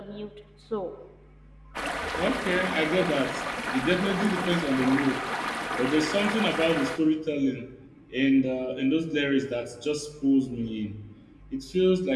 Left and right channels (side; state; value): both; identical; correlation 1.00